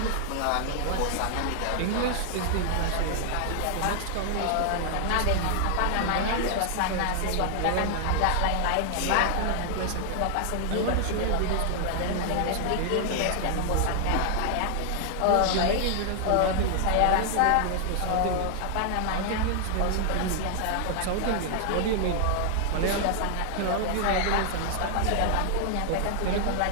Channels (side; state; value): both; different; correlation 0.00